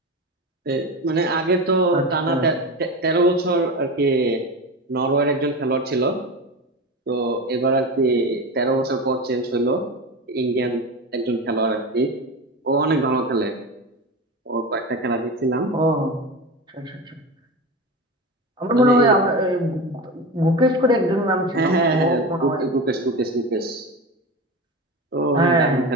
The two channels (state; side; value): normal; both; correlation 0.25